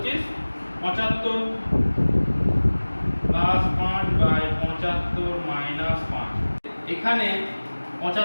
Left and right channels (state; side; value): inverted; both; correlation -1.00